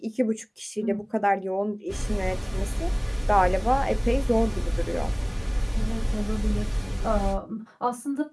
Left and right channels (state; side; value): identical; both; correlation 1.00